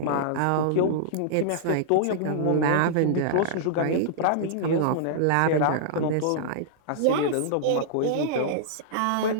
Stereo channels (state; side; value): different; both; correlation -0.02